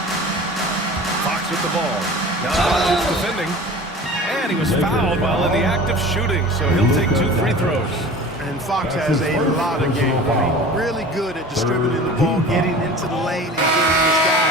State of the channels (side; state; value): both; normal; correlation 0.39